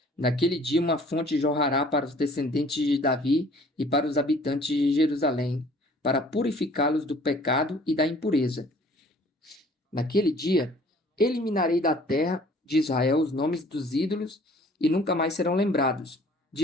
Naquele dia uma fonte jorrará para os descendentes de Davi e para os habitantes de Jerusalém, para purificá-los do pecado e da impureza. Naquele dia, eliminarei da terra de Israel os nomes dos ídolos e nunca mais serão lembrados,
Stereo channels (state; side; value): normal; both; correlation 0.53